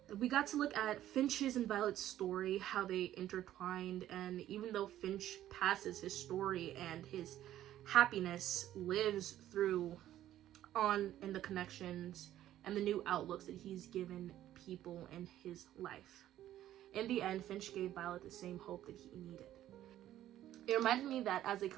We got to look at Finch's and Violet's story, how they intertwined, and even though Finch passes, his story and his happiness lives through on in the connections and the new outlooks that he's given people in his life. In the end, Finch gave Violet the same hope that he needed. It reminded me that as a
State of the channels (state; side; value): quieter; left; 12.8 dB